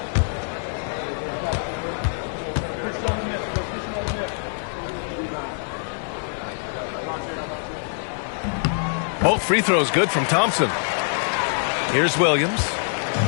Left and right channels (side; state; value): right; silent; 62 dB below the other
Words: Both free throws good from Thompson. Here's Williams.